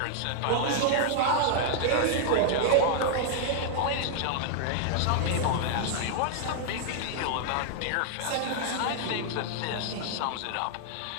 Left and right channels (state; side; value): different; both; correlation -0.01